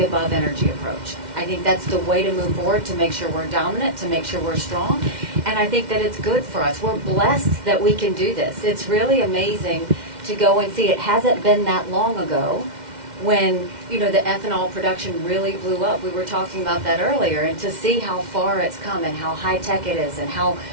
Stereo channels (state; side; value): late; left; 2.1 ms